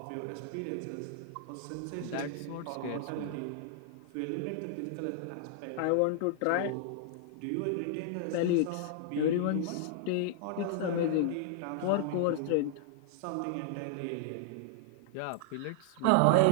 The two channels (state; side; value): different; both; correlation -0.01